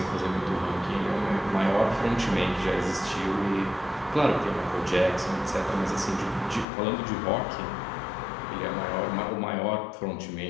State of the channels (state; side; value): drops out; right; at 6.7 s